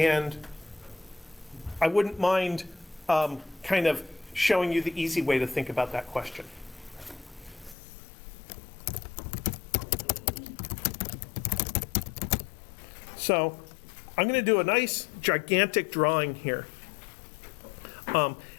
I wouldn't mind kind of showing you the easy way to think about that question. So I'm going to do a nice gigantic drawing here.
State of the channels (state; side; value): drops out; right; at 7.8 s